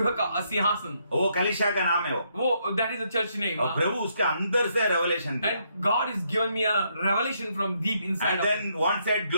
का सिंहासन, वो कलिशा का नाम है वो. that is the church name. और प्रभु उसके अंदर से रेवलेशन दिया. And God is given me a revelation from deep inside And of me. then one said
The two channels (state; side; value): inverted; both; correlation -0.74